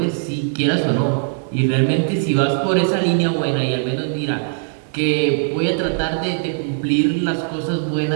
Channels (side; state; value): left; silent; digital silence